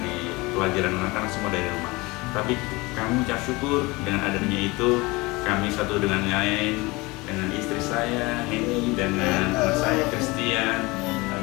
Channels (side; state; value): right; quieter; 23.6 dB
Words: pelajaran anak-anak semua dari rumah. Tapi kami ucap syukur dengan adanya itu, kami satu dengan lain, dengan istri saya, Henny, dengan anak saya, Christian,